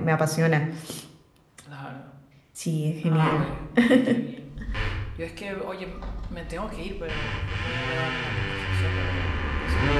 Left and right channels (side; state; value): both; identical; correlation 1.00